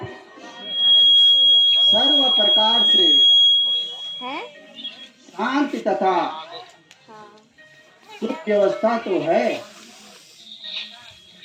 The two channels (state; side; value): identical; both; correlation 1.00